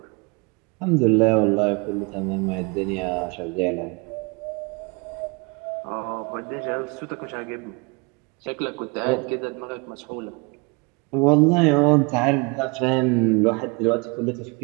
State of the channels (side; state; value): left; quieter; 29.5 dB